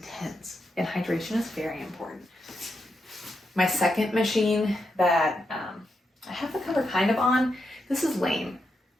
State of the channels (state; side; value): normal; both; correlation 0.84